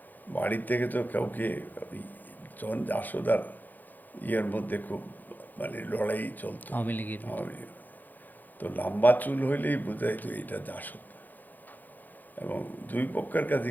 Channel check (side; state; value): right; late; 0.085 ms